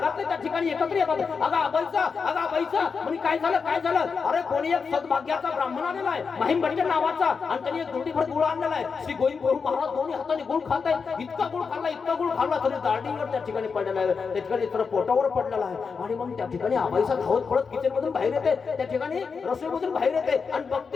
त्या ठिकाणी एकत्र येतात. अगं आबाईसा, अगं आबाईसा म्हणजे काय झालं, काय झालं. अरे कोणी एक सद्भाग्याचा ब्राह्मण आलेला आहे माहीम भट्ट नावाचा आणि त्यांनी एक दुर्डीभर गुळ आणलेला आहे. श्री गोविंद प्रभू महाराज दोन्ही हाताने गुळ खात आहेत. इतका गुळ खाल्ला, इतका गुळ खाल्ला तरी दाढीवर त्या ठिकाणी पडलेला आहे, त्या ठिकाणी तर पोटावर पडलेला आहे. आणि मग त्या ठिकाणी आबाईसा धावत पडत किचन मधून बाहेर येते, त्या ठिकाणी रसोईमधून बाहेर येते आणि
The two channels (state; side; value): quieter; right; 5.4 dB